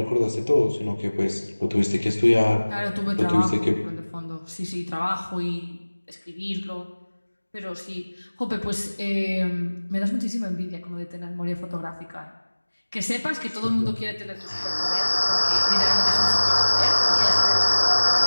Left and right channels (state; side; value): inverted; both; correlation -1.00